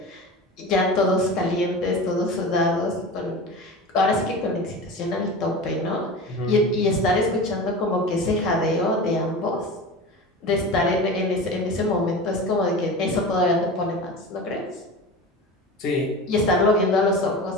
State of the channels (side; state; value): both; normal; correlation 0.31